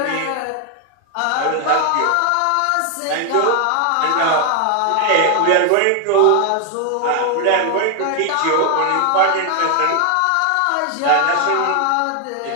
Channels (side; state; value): both; different; correlation 0.00